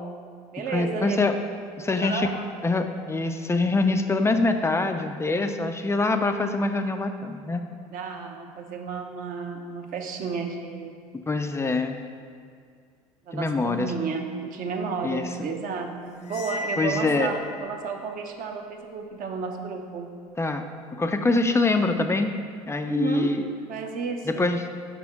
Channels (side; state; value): both; normal; correlation 0.62